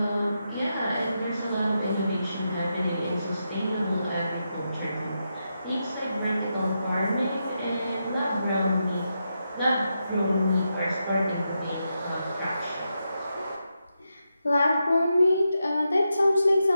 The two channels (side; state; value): both; inverted; correlation -0.86